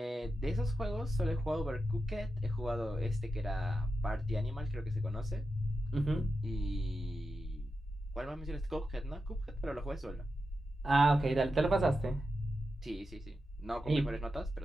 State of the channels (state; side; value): normal; both; correlation 0.89